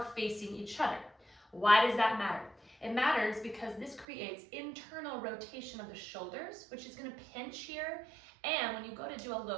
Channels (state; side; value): drops out; left; at 4.0 s